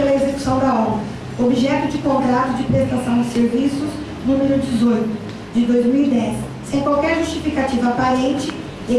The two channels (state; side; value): identical; both; correlation 1.00